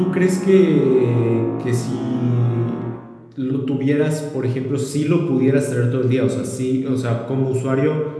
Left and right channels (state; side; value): identical; both; correlation 1.00